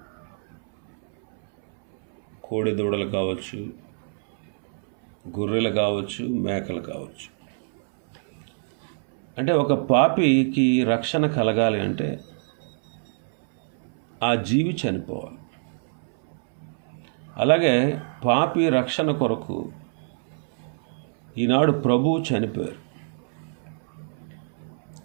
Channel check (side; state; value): left; silent; 61 dB below the other